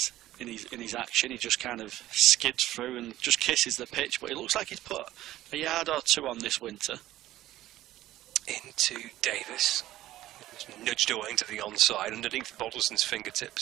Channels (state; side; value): quieter; left; 14.8 dB